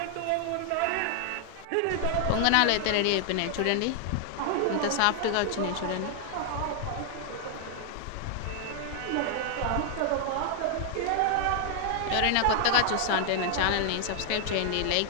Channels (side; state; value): both; different; correlation 0.00